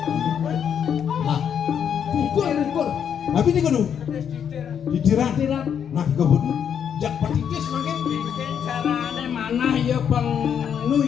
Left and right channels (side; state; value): right; quieter; 8.2 dB